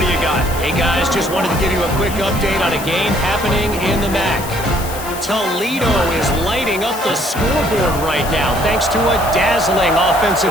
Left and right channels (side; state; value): left; noise; hiss, 12 dB below the sound